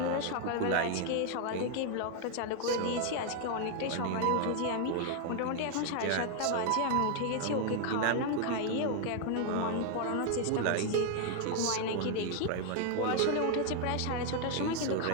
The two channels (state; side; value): different; both; correlation 0.01